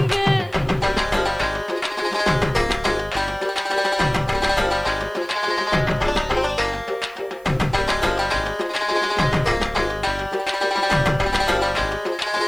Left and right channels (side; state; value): right; noise; hiss, 28 dB below the sound